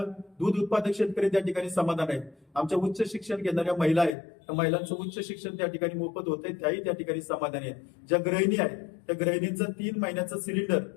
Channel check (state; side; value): drops out; right; at 4.2 s